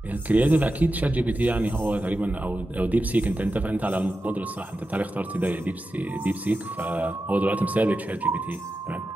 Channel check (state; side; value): normal; both; correlation 0.91